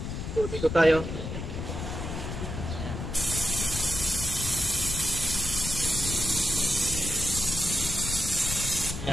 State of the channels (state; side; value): noise; left; rumble, 5 dB below the sound